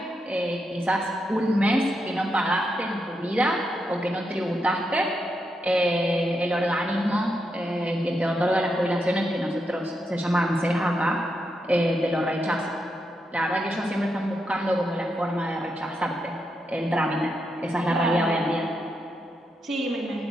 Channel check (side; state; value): both; normal; correlation 0.83